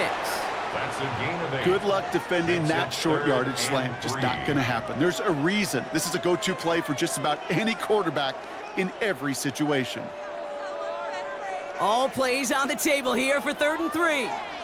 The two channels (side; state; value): both; identical; correlation 1.00